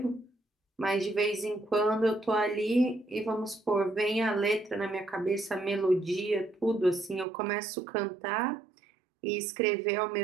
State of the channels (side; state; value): left; drops out; at 7.2 s